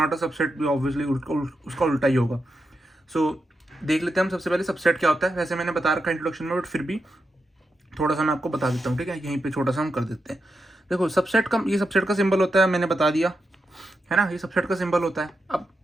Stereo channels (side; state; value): both; normal; correlation 0.86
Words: अ सबसेट भी ऑब्वियसली उसका उल्टा ही होगा। सो देख लेते हैं हम सबसे पहले सबसेट क्या होता है। वैसे मैंने बता रखा है इंट्रोडक्शन में, बट फिर भी थोड़ा सा मैं आपको बता देता हूँ, ठीक है। यहीं पे छोटा सा हम कर देते हैं। देखो सबसेट का, ये सबसेट का सिंबल होता है, मैंने बता दिया है ना, ये सबसेट का सिंबल होता है। अब